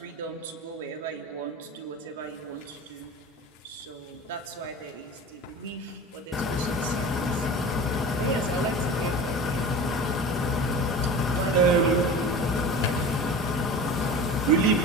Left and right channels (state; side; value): normal; both; correlation 0.34